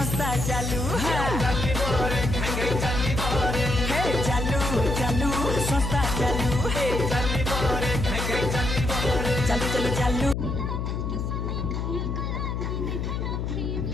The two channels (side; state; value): left; noise; hum, 2 dB below the sound